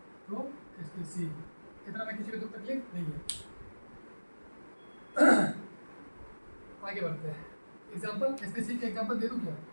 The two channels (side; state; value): both; inverted; correlation -1.00